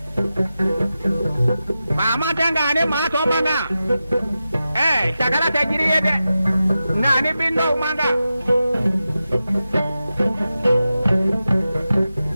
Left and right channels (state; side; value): inverted; both; correlation -0.92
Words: Mama tangane ma to manga. Sakala tajiriye de. Nani bindo manga.